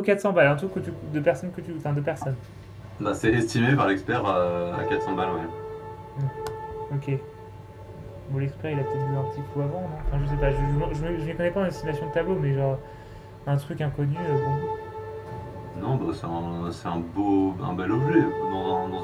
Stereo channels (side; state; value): both; identical; correlation 1.00